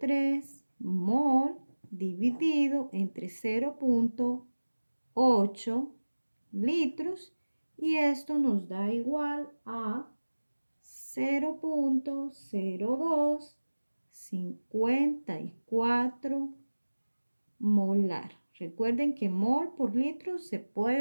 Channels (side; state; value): both; inverted; correlation -1.00